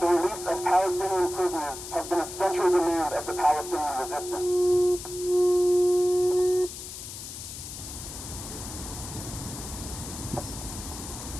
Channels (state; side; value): noise; left; hiss, 10 dB below the sound